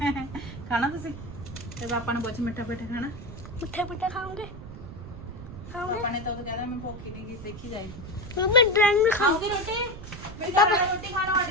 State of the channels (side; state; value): right; noise; rumble, 12 dB below the sound